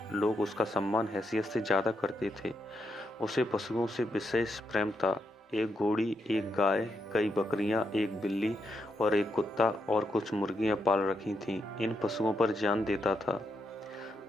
लोग उसका सम्मान हैसियत से ज़्यादा करते थे। उसे पशुओं से विशेष प्रेम था। एक घोड़ी, एक गाय, कई बकरियां, एक बिल्ली और एक कुत्ता और कुछ मुर्गियां पाल रखी थीं। इन पशुओं पर जान देता था।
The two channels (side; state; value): both; normal; correlation 0.82